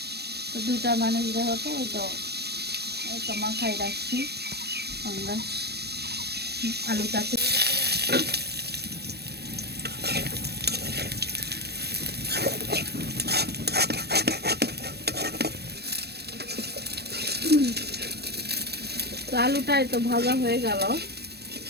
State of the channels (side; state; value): left; late; 0.47 ms